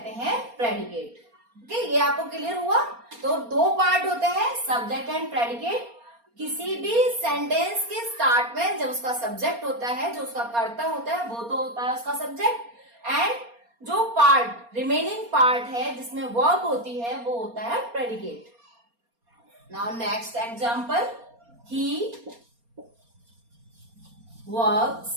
हैं प्रेडिकेट। ओके, ये आपको क्लियर हुआ? तो 2 पार्ट होते हैं, सब्जेक्ट एंड प्रेडिकेट। किसी भी सेंटेंस के स्टार्ट में जब उसका सब्जेक्ट होता है, जो उसका कर्ता होता है, वो तो होता है उसका सब्जेक्ट, एंड जो पार्ट रिमेनिंग पार्ट है जिसमें वर्ब होती है वो होता है predicate. Now next example, he works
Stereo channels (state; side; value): late; left; 4.3 ms